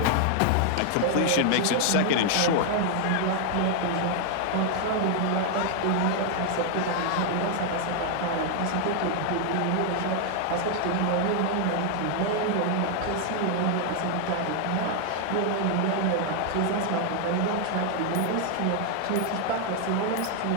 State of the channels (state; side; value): different; both; correlation 0.00